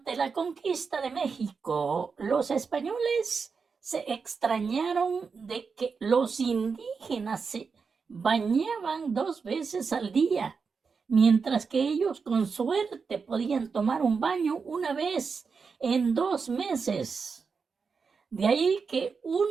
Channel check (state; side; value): quieter; left; 5.3 dB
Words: la conquista de México, los españoles se extrañaron de que los indígenas se bañaban 2 veces al día, mientras que ellos con suerte podían tomar un baño una vez en 2 meses. De ahí que